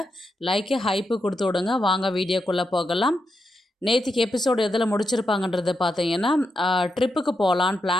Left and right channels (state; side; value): normal; both; correlation 0.85